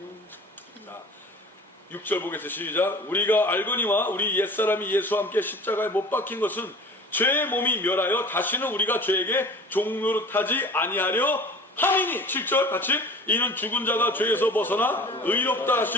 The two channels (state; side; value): normal; both; correlation 0.42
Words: 자, 6절 보겠습니다. 시작. 우리가 알거니와 우리 옛사람이 예수와 함께 십자가에 못 박힌 것은 죄의 몸이 멸하여 다시는 우리가 죄에게 종노릇하지 아니하려 함이니. 7절 같이. 이는 죽은 자가 죄에서 벗어나 의롭다